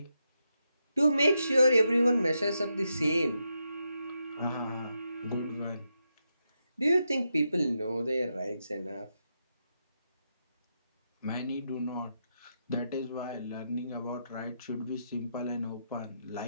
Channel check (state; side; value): inverted; both; correlation -0.84